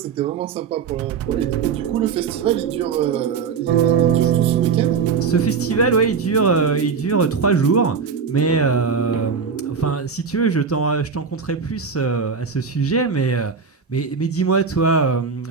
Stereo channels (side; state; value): left; quieter; 5.8 dB